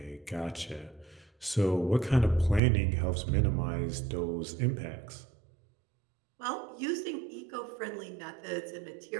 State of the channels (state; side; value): drops out; left; at 2.6 s